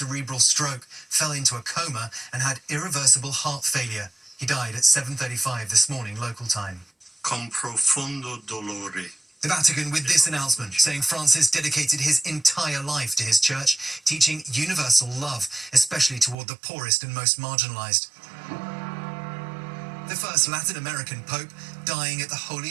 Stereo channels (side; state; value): left; drops out; at 16.4 s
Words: stroke, fell into a coma, and had irreversible heart failure. He died at 7:35 this morning, local time. Con profondo dolore. The Vatican with this announcement, saying Francis dedicated his entire life to his church, teaching universal love, especially toward the poorest and most marginalized. The first Latin American pope dying at the